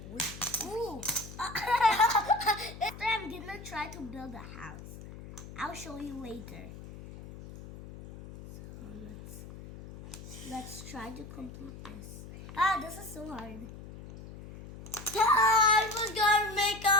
Ooh. After I'm gonna try to build a house. I'll show you later. So let's try to complete this. This is so hard. I was gonna make a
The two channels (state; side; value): noise; left; hum, 14 dB below the sound